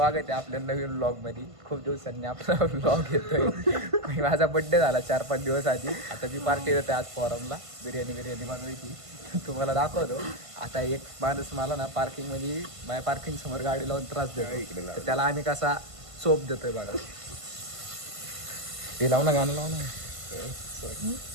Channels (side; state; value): left; late; 1.5 ms